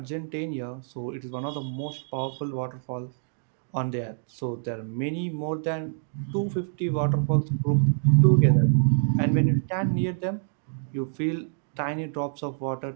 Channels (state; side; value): silent; left; digital silence